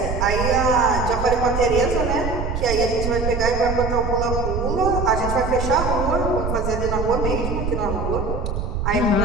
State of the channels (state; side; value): noise; right; rumble, 3 dB below the sound